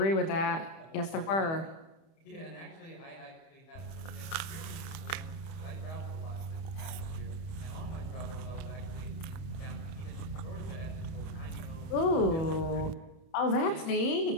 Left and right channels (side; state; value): right; late; 30 ms